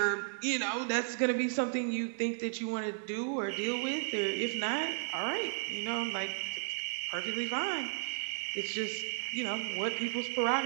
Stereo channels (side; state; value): left; silent; digital silence